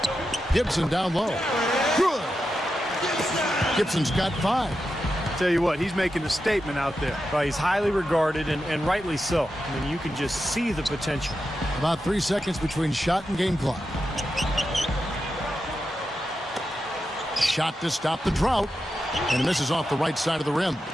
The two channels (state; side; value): normal; both; correlation 0.89